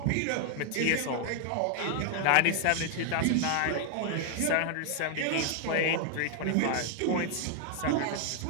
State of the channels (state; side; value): different; both; correlation 0.00